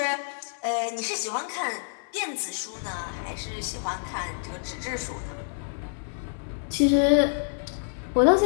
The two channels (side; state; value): right; silent; 58 dB below the other